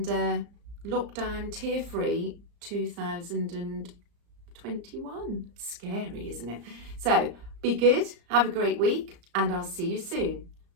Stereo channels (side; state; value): left; late; 34 ms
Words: lockdown tear-free 2021. Scary, isn't it? So be good, have a great week, and I'll see you soon.